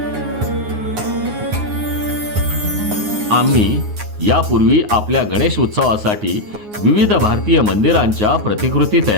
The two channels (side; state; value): left; late; 9.6 ms